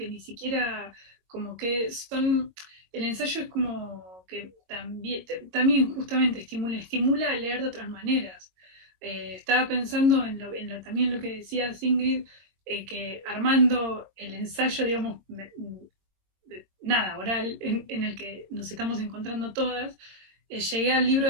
ni siquiera como que son, el ensayo es como que también justamente estimula a leer de otras maneras. Estaba pensando también lo que decía Ingrid, que armando el ensayo, digamos, nada, oral, en el que nos estamos encontrando todas, llegué al libro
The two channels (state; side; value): late; left; 22 ms